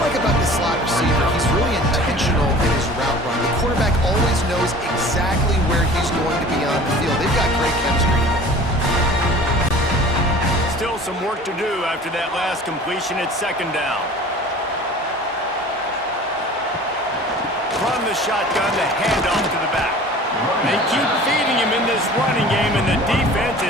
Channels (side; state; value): both; normal; correlation 0.44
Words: like about this slot receiver, he's really intentional in his route run. The quarterback always knows exactly where he's going to be on the field. They've got great chemistry. Still some work to do after that last completion at 2nd down. From the shotgun, the handoff to the back. They keep feeding him in this running game, and the defense